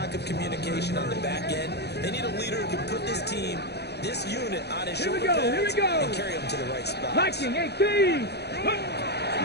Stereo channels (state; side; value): late; right; 0.48 ms